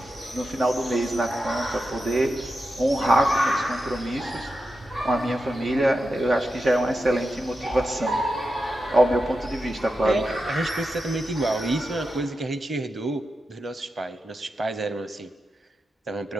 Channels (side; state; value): both; normal; correlation 0.89